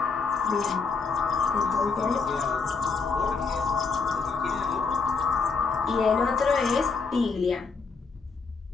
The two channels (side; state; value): right; quieter; 4.8 dB